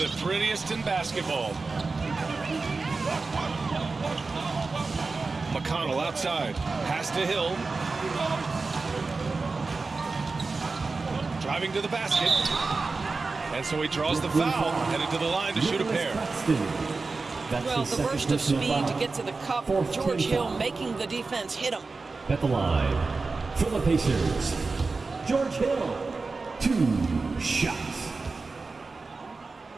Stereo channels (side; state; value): left; quieter; 4.0 dB